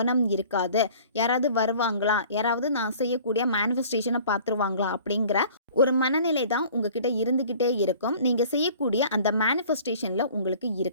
இருக்காது. யாராவது வருவாங்களா, யாராவது நான் செய்யக்கூடிய மேனிஃபெஸ்டேஷனை பார்த்துருவாங்களா அப்படிங்கிற ஒரு மனநிலை தான் உங்ககிட்ட இருந்துக்கிட்டே இருக்கும். நீங்கள் செய்யக்கூடிய அந்த மேனிஃபெஸ்டேஷனில் உங்களுக்கு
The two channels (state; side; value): inverted; both; correlation -0.49